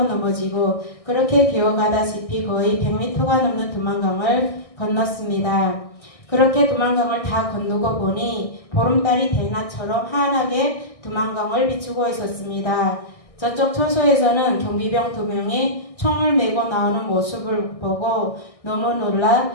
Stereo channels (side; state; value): right; late; 1.6 ms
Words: 넘어지고 그렇게 기어가다시피 거의 100m가 넘는 두만강을 건넜습니다. 그렇게 두만강을 다 건너고 보니 보름달이 대낮처럼 환하게 두만강을 비추고 있었습니다. 저쪽 초소에서는 경비병 2명이 총을 메고 나오는 모습을 보고 너무 놀라